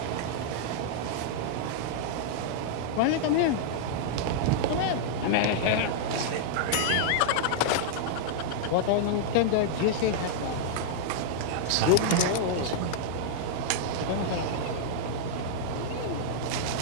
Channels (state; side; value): different; both; correlation -0.02